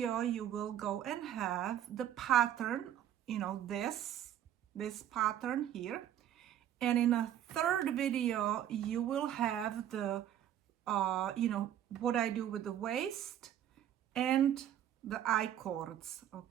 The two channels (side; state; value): left; quieter; 10.9 dB